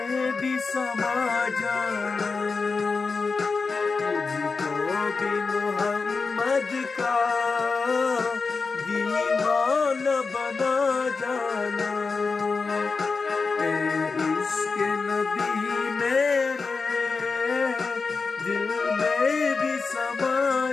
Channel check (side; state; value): right; quieter; 4.5 dB